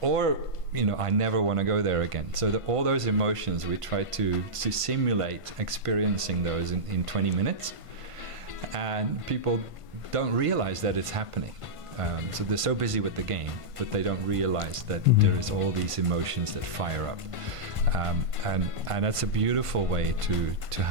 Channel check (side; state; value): left; late; 1.5 ms